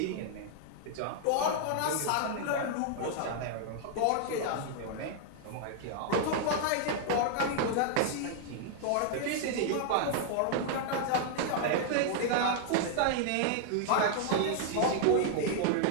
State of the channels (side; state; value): both; different; correlation -0.01